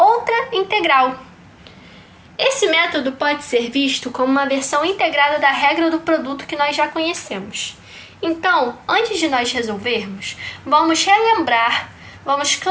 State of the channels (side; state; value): both; identical; correlation 1.00